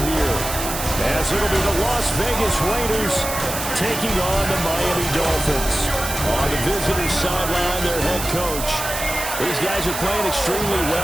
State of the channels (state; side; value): noise; right; hiss, 6 dB below the sound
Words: here, as it'll be the Las Vegas Raiders taking on the Miami Dolphins. On the visitor sideline, their head coach. These guys are playing extremely